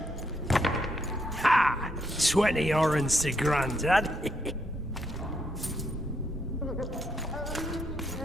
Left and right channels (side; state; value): both; normal; correlation 0.76